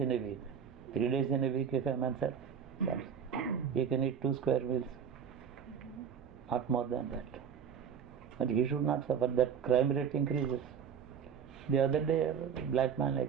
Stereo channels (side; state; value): left; quieter; 7.6 dB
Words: a week. 3 days in a week, if a man serves, he can eat 2 square meals not more than that. But he should not suffer. That crime rate increases. The other day, a black man, I